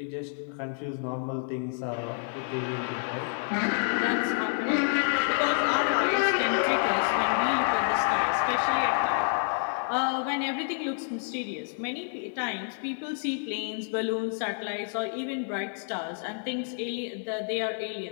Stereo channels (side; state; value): right; silent; 59 dB below the other